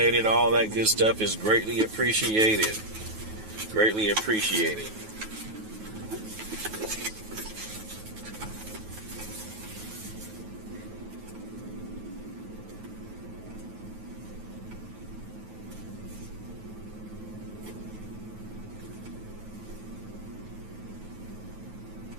All that good stuff is greatly appreciated. Greatly appreciated.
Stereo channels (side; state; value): left; late; 9.3 ms